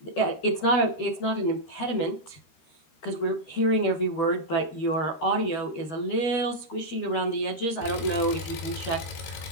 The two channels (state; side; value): late; right; 13 ms